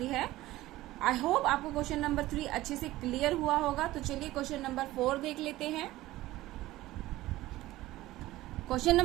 है। आई होप आपको क्वेश्चन नंबर 3 अच्छे से क्लियर हुआ होगा। तो चलिए क्वेश्चन नंबर 4 देख लेते हैं। क्वेश्चन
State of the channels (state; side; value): quieter; left; 16.9 dB